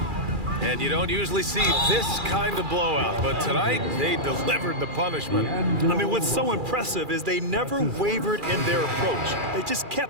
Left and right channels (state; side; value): late; left; 2.4 ms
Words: And you don't usually see this kind of blowout, but tonight they delivered the punishment. I mean, what's so impressive is they never wavered in their approach. They just